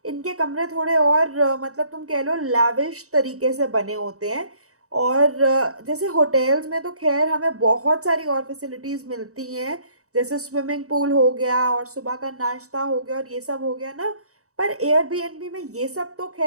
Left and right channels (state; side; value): late; left; 0.65 ms